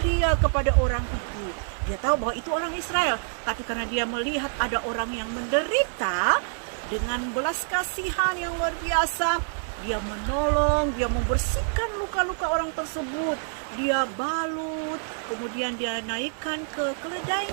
kepada orang itu. Dia tahu bahwa itu orang Israel, tapi karena dia melihat ada orang yang menderita, dengan belas kasihan yang luar biasa, dia menolong, dia membersihkan luka-luka orang tersebut. Dia balut, kemudian dia naikkan ke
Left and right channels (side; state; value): left; silent; 59 dB below the other